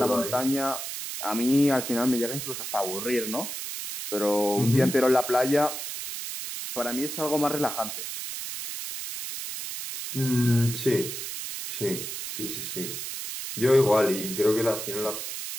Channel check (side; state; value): right; noise; hiss, 6 dB below the sound